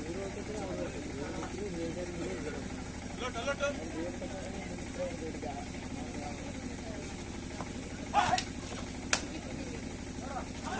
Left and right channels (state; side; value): identical; both; correlation 1.00